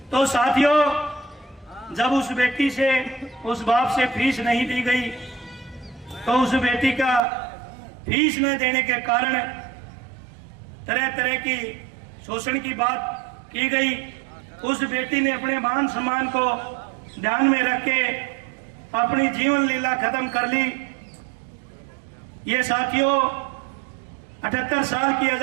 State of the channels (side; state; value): left; drops out; at 7.2 s